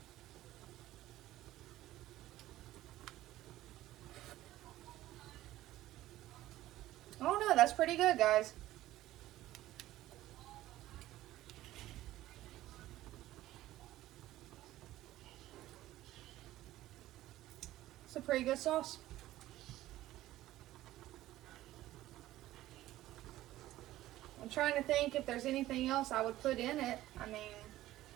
Oh no, that's pretty good, guys. pretty good sauce. I'm trying to think if there's anything else I would put in it. I mean,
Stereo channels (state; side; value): quieter; left; 15.2 dB